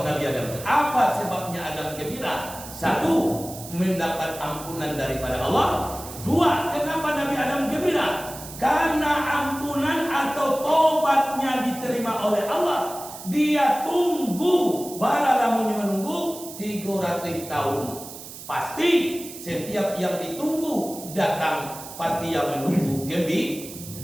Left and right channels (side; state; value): right; noise; hiss, 13 dB below the sound